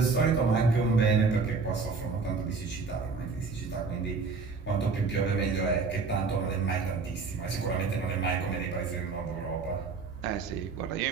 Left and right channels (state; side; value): quieter; left; 4.6 dB